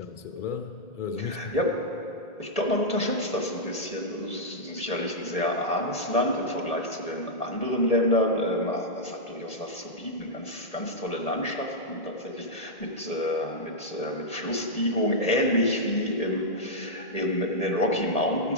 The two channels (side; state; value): right; late; 1.8 ms